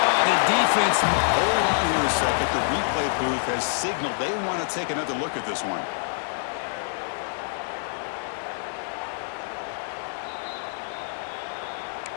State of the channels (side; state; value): right; silent; digital silence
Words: the defense. Hold on here a second. The replay booth has signaled they want to take another look at this one.